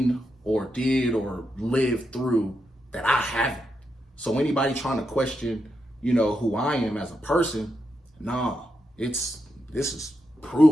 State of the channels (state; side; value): normal; both; correlation 0.84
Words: or did or lived through that I haven't. So anybody trying to question, who I am as a person, this is